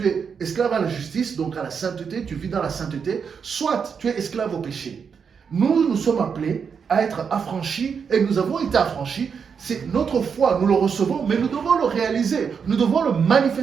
es esclave à la justice, donc à la sainteté, tu vis dans la sainteté, soit tu es esclave au péché. Nous sommes appelés à être affranchis et nous avons été affranchis. C'est notre foi, nous le recevons, mais nous devons le réaliser, nous devons le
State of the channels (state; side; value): quieter; left; 6.4 dB